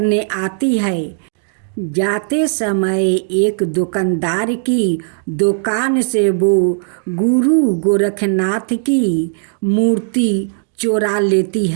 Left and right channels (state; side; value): silent; left; digital silence